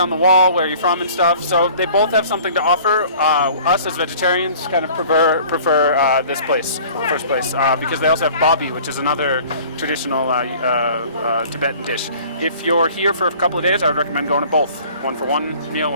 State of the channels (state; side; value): inverted; both; correlation -0.49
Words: the wall where you're from and stuff. So they both have something to offer. Us as vegetarians kind of prefer this place, first place, because they also have babi, which is another traditional Tibetan dish. If you're here for a couple of days, I would recommend going to both. One for one meal,